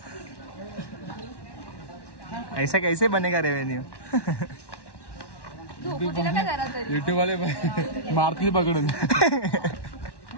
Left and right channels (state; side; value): late; right; 1.1 ms